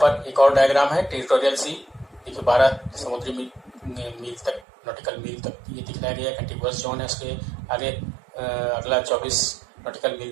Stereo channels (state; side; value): drops out; left; at 4.7 s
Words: एक और डायग्राम है टेरिटोरियल सी, देखिए 12 समुद्री मील तक, नॉटिकल मील तक ये दिखलाया गया। कंटिगुअस जोन है, उसके आगे अगला 24 नॉटिकल मील